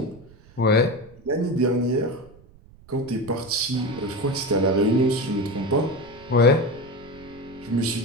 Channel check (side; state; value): right; noise; rumble, 24 dB below the sound